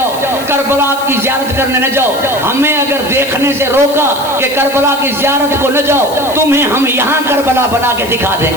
करबला की ज़ियारत करने न जाओ, हमें अगर देखने से रोका कि करबला की ज़ियारत को न जाओ, तुम्हें हम यहाँ करबला बना के दिखा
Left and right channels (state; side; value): noise; left; hiss, 14 dB below the sound